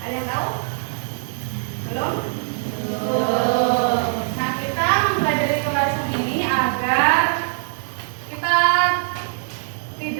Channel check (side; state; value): left; silent; digital silence